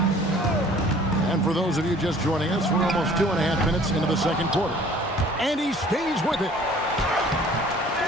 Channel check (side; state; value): both; normal; correlation 0.52